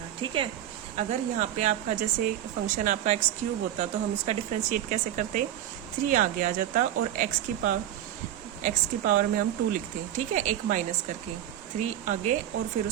ठीक है। अगर यहाँ पे आपका जैसे फंक्शन आपका एक्स क्यूब होता तो हम इसका डिफरेंशिएट कैसे करते, 3 आगे आ जाता और एक्स की पावर में हम 2 लिखते, ठीक है, एक माइनस करके, 3 आगे और फिर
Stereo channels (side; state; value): left; quieter; 11.7 dB